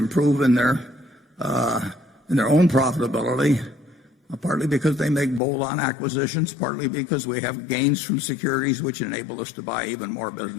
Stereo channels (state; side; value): drops out; right; at 5.4 s